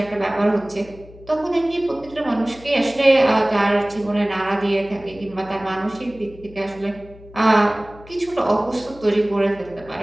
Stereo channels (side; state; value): left; noise; hum, 21 dB below the sound